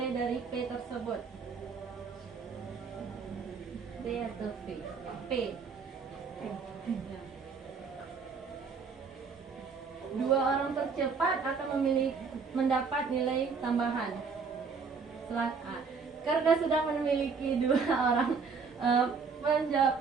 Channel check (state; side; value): quieter; left; 5.3 dB